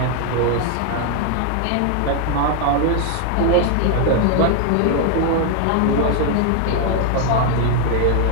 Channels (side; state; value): both; different; correlation 0.00